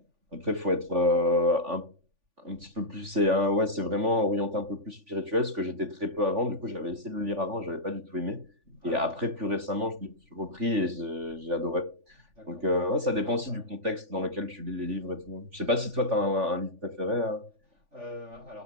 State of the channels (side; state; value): left; late; 3.5 ms